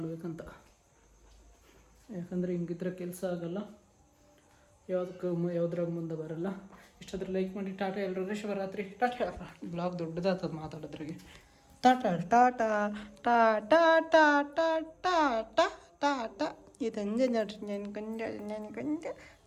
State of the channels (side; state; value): both; identical; correlation 1.00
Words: ಯಾಕಂದರೆ ಹಿಂಗಿದ್ರೆ ಕೆಲಸ ಆಗಲ್ಲ, ಯಾವುದ್ರಾಗ ಮುಂದೆ ಬರಲ್ಲ. ಇಷ್ಟಾದ್ರೆ ಲೈಕ್ ಮಾಡಿ. ಟಾಟಾ ಎಲ್ಲರೂ. ಶಿವರಾತ್ರಿ. ಟಾಟಾ. ಬ್ಲಾಗ್ ದೊಡ್ಡದಾಗ್ತದೆ ಮಾತಾಡೋದ್ರಿಗೆ. ಟಾಟಾ ಟಾಟಾ ಟಾಟಾ ಟಾಟಾ ಟಾಟಾ ಟಾಟಾ. ಇದಂಜೆ ನೋಡ್ರಿ. ನೆನ್ಕೊಂಡ